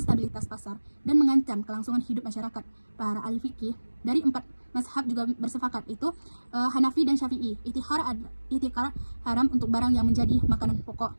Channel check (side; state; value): both; inverted; correlation -1.00